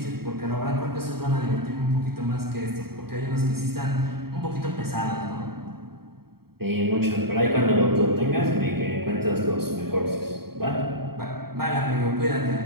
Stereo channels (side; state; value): left; late; 0.95 ms